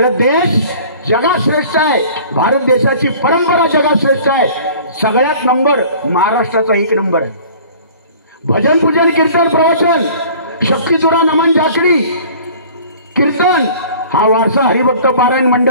देश जगात श्रेष्ठ आहे. भारत देशाची परंपरा जगात श्रेष्ठ आहे. सगळ्यात नंबर महाराष्ट्राचा 1 नंबर आहे. भजन, पूजन, कीर्तन, प्रवचन, शक्तितुरा, नमन, जाकडी, कीर्तन हा वारसा हरिभक्त पारायण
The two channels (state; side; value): inverted; both; correlation -0.47